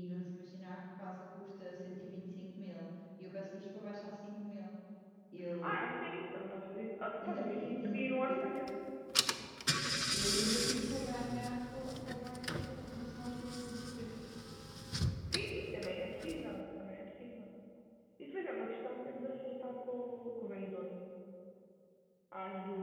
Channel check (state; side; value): identical; both; correlation 1.00